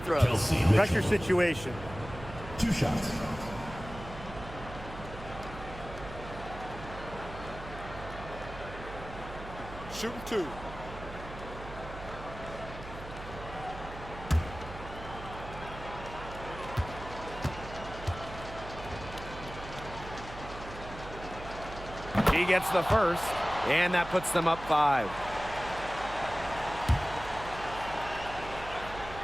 Pressure situation. 2 shots. Shooting 2. He gets the first, and that puts them up 5.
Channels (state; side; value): noise; right; hum, 12 dB below the sound